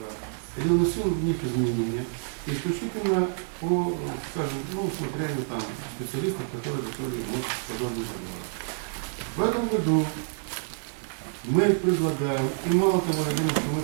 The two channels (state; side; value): silent; left; digital silence